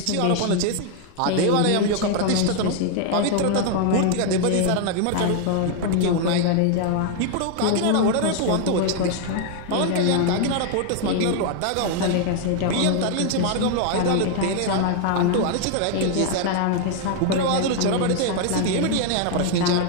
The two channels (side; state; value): both; different; correlation 0.00